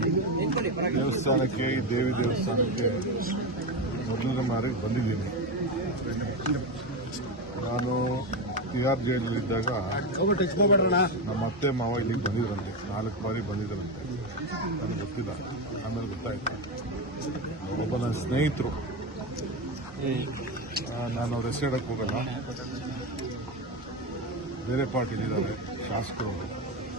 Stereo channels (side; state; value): both; normal; correlation 0.14